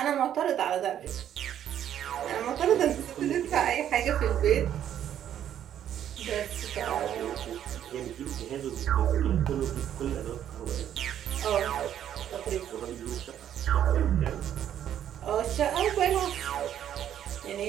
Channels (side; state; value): left; quieter; 10.3 dB